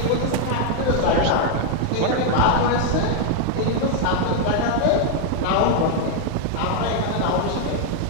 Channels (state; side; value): different; both; correlation 0.00